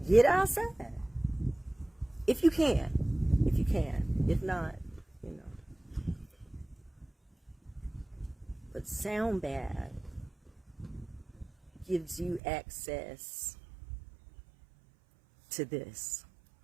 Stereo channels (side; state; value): left; drops out; at 12.4 s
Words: Get outside. If you can. If not, you know. But sound bath gives you access to this.